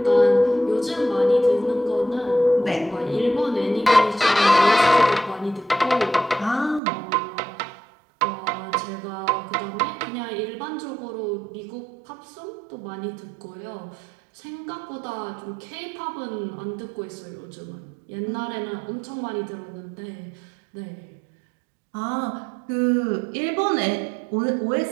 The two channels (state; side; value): drops out; left; at 6.8 s